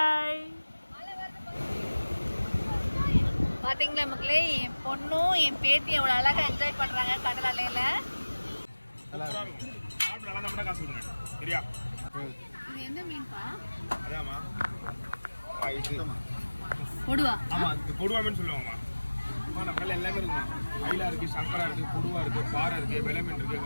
பார்த்தீங்களா மக்களே, என் பொண்ணும் என் பேத்தி எவ்வளோ அழகாக என்ஜாய் பண்ணுறாங்க கடல் அலையில். இது என்ன மீன்பா? கொடுவா. ஆமாம், இது கொடுவா மீன் சொல்லுவாங்கம்மா. நம்ம கடலில் எல்லாமே இருக்குமா, மயிலா இருக்குது, சங்கரா இருக்குது, கொடுவா இருக்குது, பாறை இருக்குது, வெலை மீன் இருக்குது,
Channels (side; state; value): both; inverted; correlation -1.00